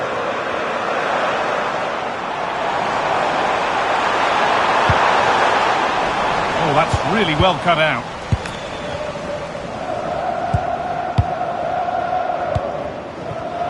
Oh, that's really well cut out.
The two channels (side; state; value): both; identical; correlation 1.00